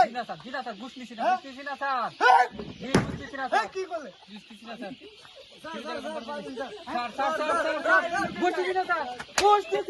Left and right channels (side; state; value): both; identical; correlation 1.00